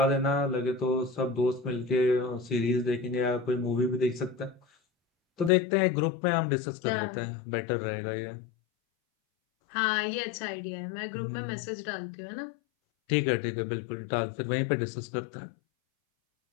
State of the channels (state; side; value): drops out; right; at 5.5 s